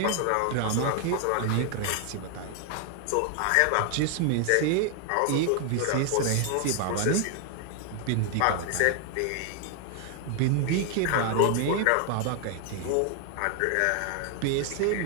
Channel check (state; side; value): different; both; correlation 0.00